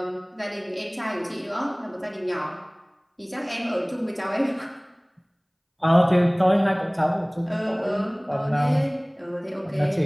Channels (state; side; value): identical; both; correlation 1.00